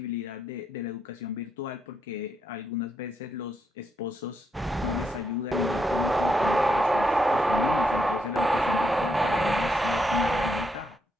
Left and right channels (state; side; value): normal; both; correlation 0.78